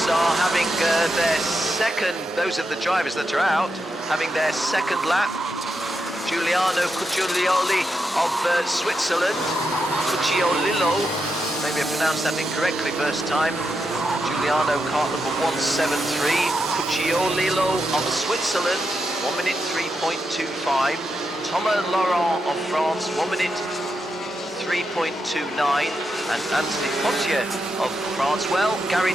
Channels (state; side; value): normal; both; correlation 0.85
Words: are having their second, those of the drivers that are out, having their second lap. Giuliano Cucciolioli of Switzerland, Cucciolillo, maybe I pronounced that incorrectly first time. Giuliano, kart number 173, Cucciolillo of Switzerland, 1 minute 3.25. Thomas Laurent of France, 1 minute 3.29, and Anthony Potier of France. Well, Gary